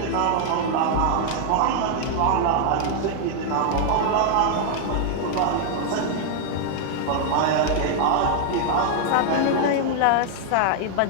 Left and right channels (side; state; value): both; different; correlation 0.00